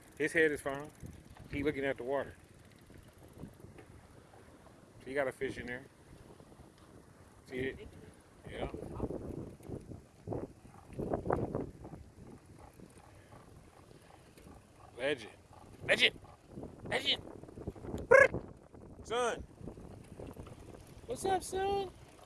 His head is fine. He looking at the water. So you got a fish in there. See it? Yeah. Legend. Legend. Legend. Son. What's up, son?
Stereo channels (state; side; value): identical; both; correlation 1.00